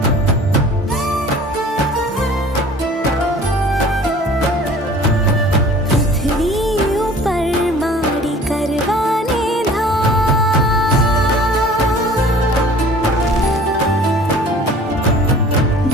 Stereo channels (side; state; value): both; normal; correlation 0.47